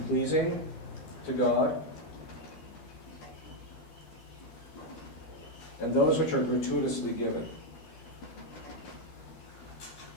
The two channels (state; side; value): late; right; 12 ms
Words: to God, and those which are gratuitously given.